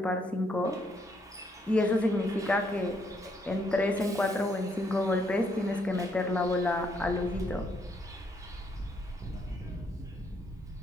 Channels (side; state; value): both; normal; correlation 0.73